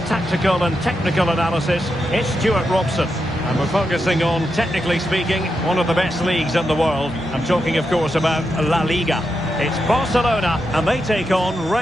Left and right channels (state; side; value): normal; both; correlation 0.86